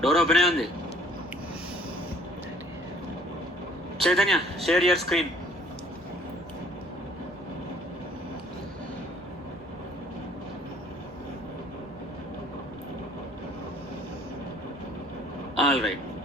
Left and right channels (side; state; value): both; normal; correlation 0.56